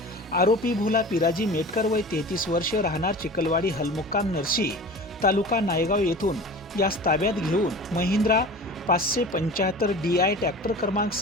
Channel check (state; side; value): normal; both; correlation 0.37